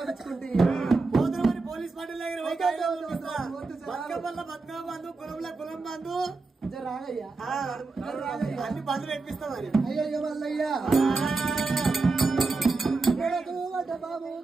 పోతున్నమని పోలీస్ పార్టీ దగ్గర బతుకమ్మ బంధు కులంలో కులం బంధు రాగయ్యా అన్ని బంధులు ఎక్కిస్తామని అయ్యయ్య మల్లయ్యా బాబు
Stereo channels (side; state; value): left; quieter; 3.8 dB